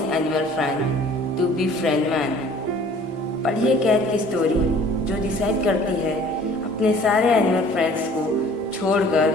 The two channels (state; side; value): normal; both; correlation 0.52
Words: animal friends to befriend man. पढ़िए कैट की स्टोरी जो डिसाइड करती है अपने सारे एनिमल फ्रेंड्स को छोड़कर